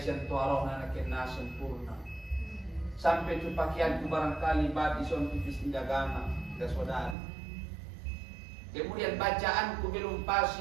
rohna kena sempurna. Sampai tu pakaianku barangkali bab ison tipis indagama dan saudara. Kemudian bacaanku belum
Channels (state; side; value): drops out; left; at 7.2 s